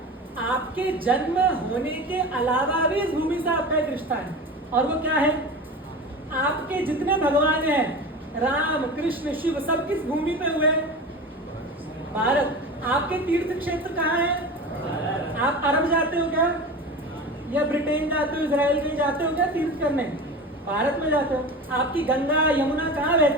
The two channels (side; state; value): both; normal; correlation 0.31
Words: आपके जन्म होने के अलावा भी इस भूमि से आपका एक रिश्ता है, और वो क्या है? आपके जितने भगवान हैं, राम कृष्ण शिव, सब किस भूमि पे हुए? भारत। आपके तीर्थ क्षेत्र कहाँ है? आप अरब जाते हो क्या, या ब्रिटेन जाते हो, इजराइल कहीं जाते हो क्या तीर्थ करने? भारत में जाते हो। आपकी गंगा यमुना कहाँ